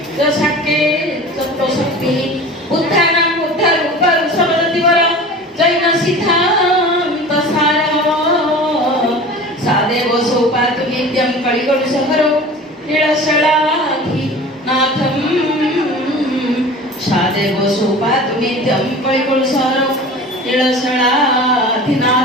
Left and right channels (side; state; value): both; normal; correlation 0.38